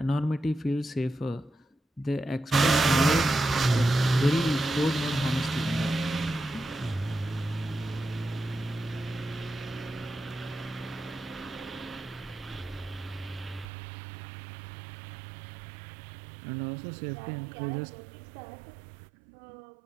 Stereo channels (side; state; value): left; drops out; at 13.7 s